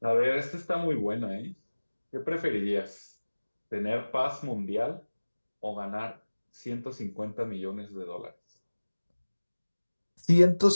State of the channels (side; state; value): both; inverted; correlation -1.00